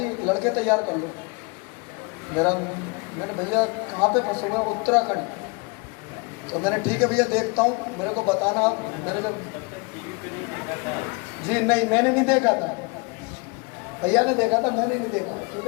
लड़के तैयार कर लो। मैंने भैया कहाँ पे फंसे हुए हैं? उत्तराखंड। तो मैंने ठीक है भैया देखता हूँ, मेरे को बताना। मैंने जब जी नहीं, मैंने नहीं देखा था, भैया ने देखा था, मैंने नहीं देखा। क्योंकि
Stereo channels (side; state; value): right; quieter; 30.1 dB